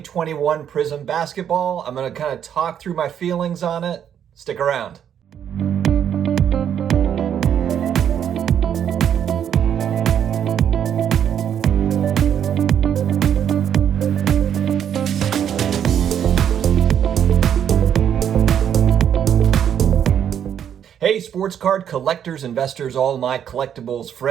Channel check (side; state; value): left; quieter; 9.1 dB